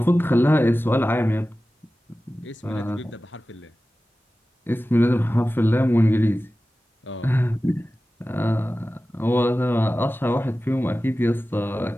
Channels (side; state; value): both; normal; correlation 0.95